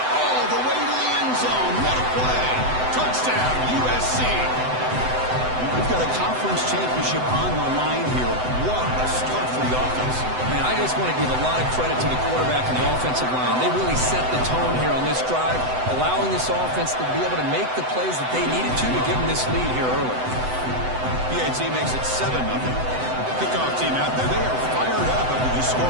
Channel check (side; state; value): left; late; 7.9 ms